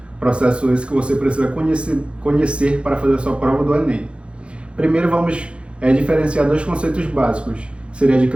processo esse que você precisa conhecer para fazer a sua prova do Enem. Primeiro vamos diferenciar dois conceitos básicos, seria de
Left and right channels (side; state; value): left; late; 0.058 ms